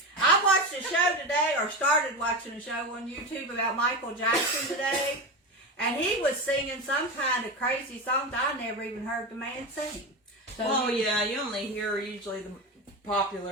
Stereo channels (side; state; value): both; normal; correlation 0.20